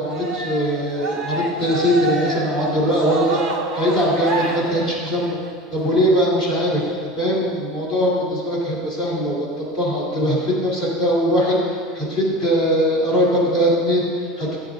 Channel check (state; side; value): normal; both; correlation 0.36